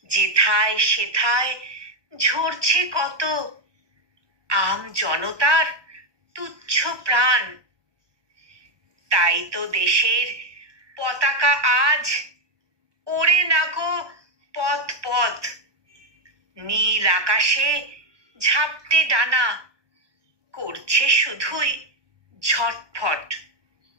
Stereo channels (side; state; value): left; late; 1.1 ms